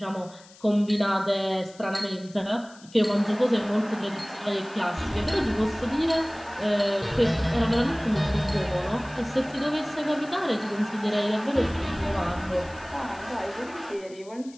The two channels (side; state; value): left; noise; hiss, 23 dB below the sound